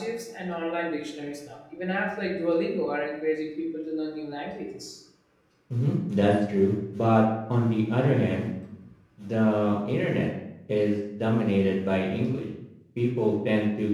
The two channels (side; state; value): both; identical; correlation 1.00